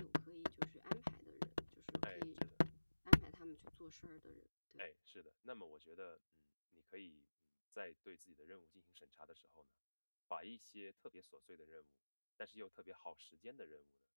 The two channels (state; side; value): inverted; both; correlation -1.00